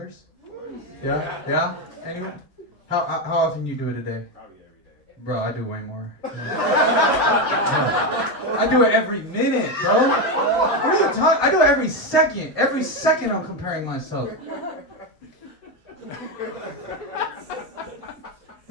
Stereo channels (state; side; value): normal; both; correlation 0.10